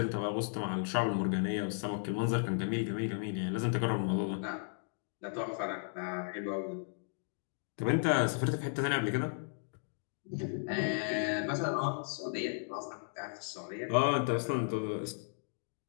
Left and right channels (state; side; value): silent; right; digital silence